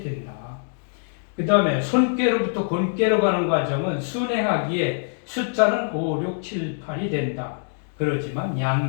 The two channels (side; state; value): right; silent; digital silence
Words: 그 다음에 손괴로부터 곤괴로 가는 과정은 순행하기에 숫자는 5, 6, 7, 8이 된다. 그렇지만